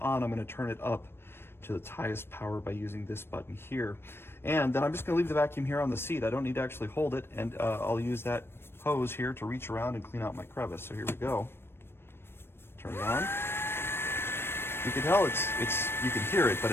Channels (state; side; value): late; right; 0.11 ms